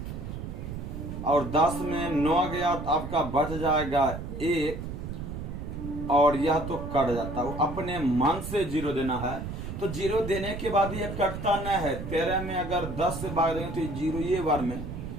और 10 में 9 गया तो आपका बच जाएगा 1 और यह तो कट जाता है। अपने मन से 0 देना है तो 0 देने के बाद यह कटता न है। 13 में अगर 10 से भाग देंगे तो 0 ये बार में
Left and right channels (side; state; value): right; noise; rumble, 7 dB below the sound